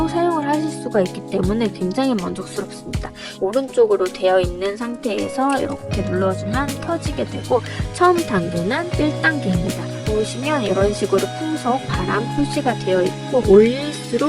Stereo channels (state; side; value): identical; both; correlation 1.00